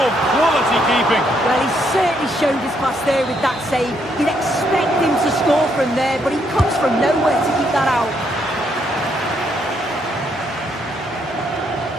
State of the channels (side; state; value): both; normal; correlation 0.74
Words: quality keeping. Well, he certainly showed his class there with that save. You'd expect him to score from there, but he comes from nowhere to keep that out.